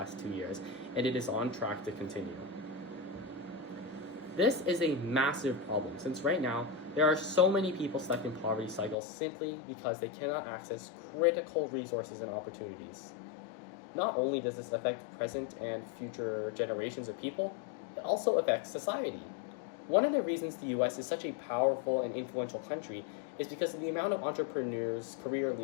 2 years, and it is on track to continue. This is a massive problem, since right now, there are so many people stuck in poverty cycles simply because they cannot access critical resources and opportunities. Not only does this affect present and future generations of people, it also affects society. One of the reasons the US is such a powerful and influential country is because of the amount of entrepreneurs, career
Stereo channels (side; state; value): right; drops out; at 9.0 s